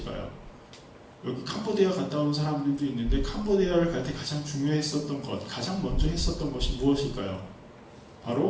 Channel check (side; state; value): both; identical; correlation 1.00